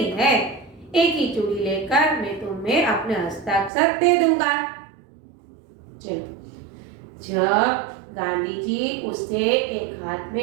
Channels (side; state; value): left; drops out; at 3.7 s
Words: है, एक ही चूड़ी लेकर मैं तुम्हें अपने हस्ताक्षर दे दूंगा। चलो, जब गांधी जी उसे एक हाथ